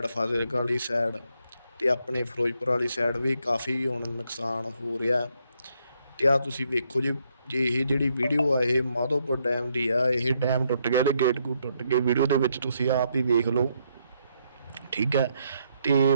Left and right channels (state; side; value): inverted; both; correlation -0.75